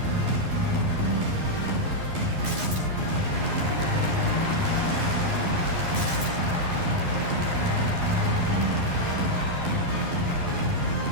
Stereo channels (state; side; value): late; left; 11 ms